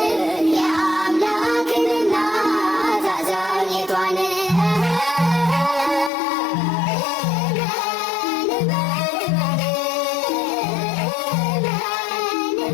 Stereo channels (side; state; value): right; drops out; at 6.1 s